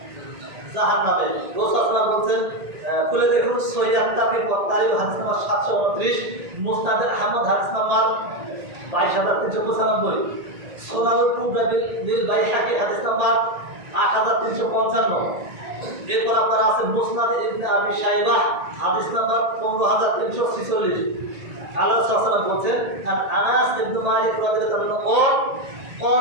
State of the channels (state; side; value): late; left; 1.8 ms